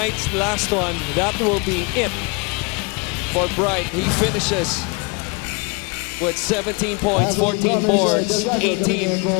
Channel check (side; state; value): right; quieter; 30.3 dB